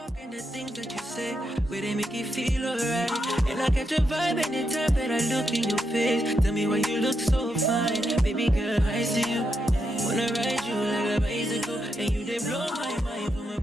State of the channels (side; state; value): both; normal; correlation 0.83